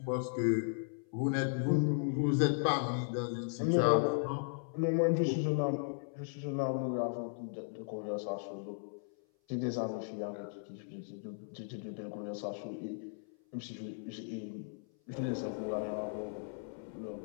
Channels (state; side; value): silent; right; 54 dB below the other